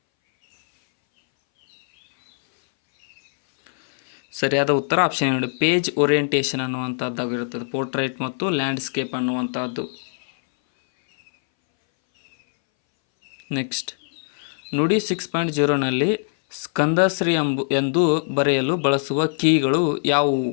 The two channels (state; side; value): silent; right; 61 dB below the other